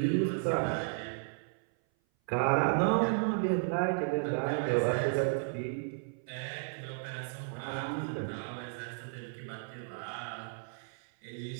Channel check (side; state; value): left; silent; 55 dB below the other